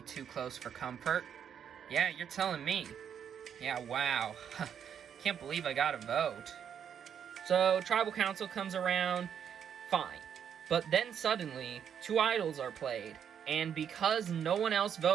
too close for comfort. Yeah, you're telling me. Yeah, wow. Can't believe I got a vote. So, tribal council comes around, fine. But then suddenly, two idols are played. And because no one else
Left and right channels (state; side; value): quieter; left; 8.3 dB